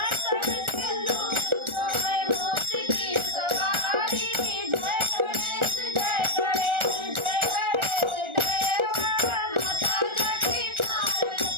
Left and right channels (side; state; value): left; late; 1.4 ms